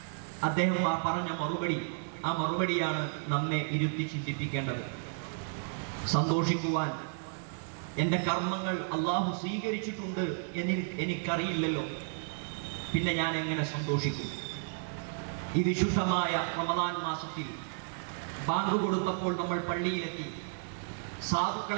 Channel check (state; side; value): silent; left; digital silence